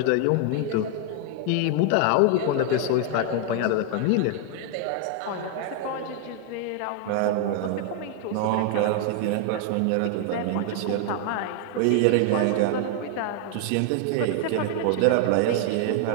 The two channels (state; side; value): different; both; correlation 0.00